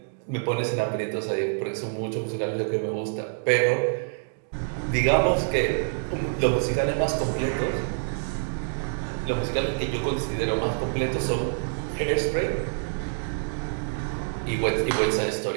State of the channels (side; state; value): left; silent; digital silence